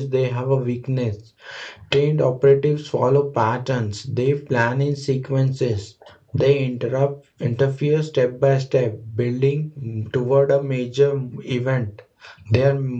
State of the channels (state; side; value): identical; both; correlation 1.00